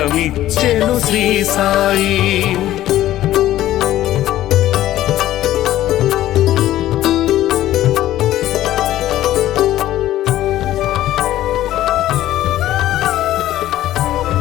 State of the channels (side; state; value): right; quieter; 13.9 dB